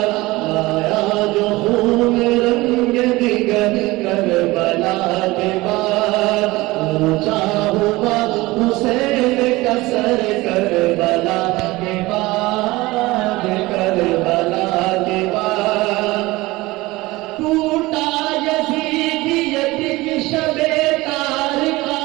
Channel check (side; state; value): left; quieter; 20.4 dB